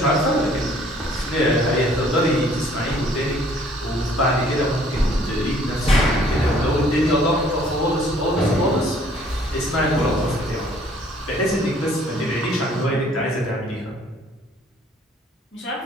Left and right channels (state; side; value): normal; both; correlation 0.59